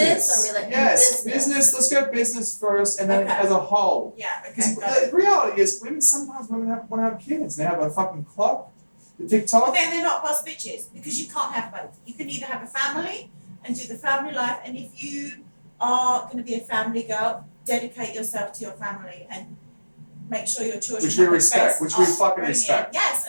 or Yes, business. Let's go business first, and then Okay. as a whole. Yeah, Because okay. the reality is, sometimes women want to have kids. They have a fucking clock, the But TikTok. then they're not boss bitches because you can't have both. You can either have a family and do the family life, and if you are going to be a family girl, dedicate yourself to your family and make sure your children Which we have the respect, best which we fucking upbringing. respect. Yes,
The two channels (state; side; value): inverted; both; correlation -1.00